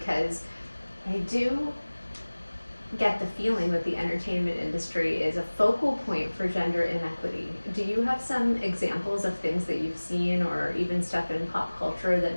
I do get the feeling that the entertainment industry is a focal point for gender inequity. Do you have some examples of things that you've seen, or even stuff in pop culture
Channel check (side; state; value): both; inverted; correlation -1.00